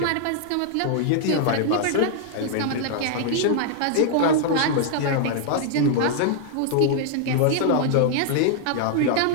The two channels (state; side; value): different; both; correlation -0.01